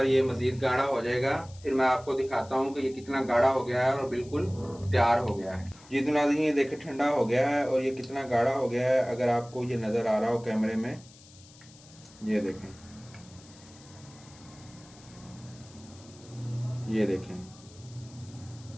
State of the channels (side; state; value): left; noise; hiss, 23 dB below the sound